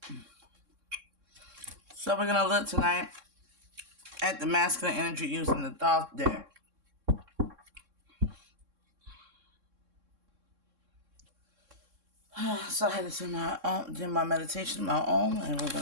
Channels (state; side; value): late; left; 3.6 ms